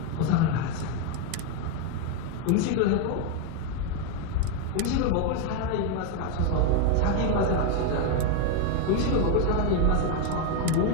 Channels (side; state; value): both; different; correlation 0.01